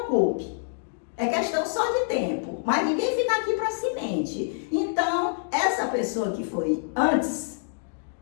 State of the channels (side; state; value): right; silent; digital silence